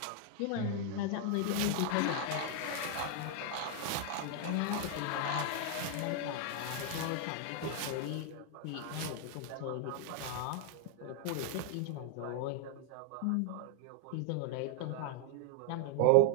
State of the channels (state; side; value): different; both; correlation 0.00